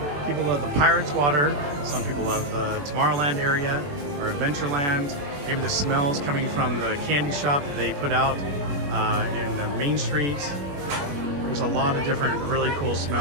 People love the Pirates Water, some people love the Tomorrowland area or Adventureland. Maybe the smells coming from the candy shop that they put out in the Main Street. There's a lot of different really cool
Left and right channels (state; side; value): late; left; 21 ms